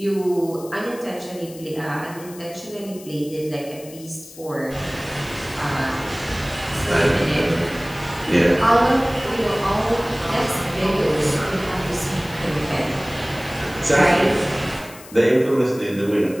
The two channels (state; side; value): noise; left; hiss, 19 dB below the sound